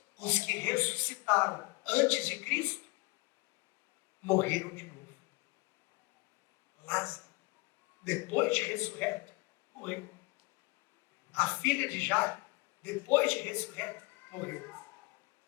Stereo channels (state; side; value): quieter; right; 24.4 dB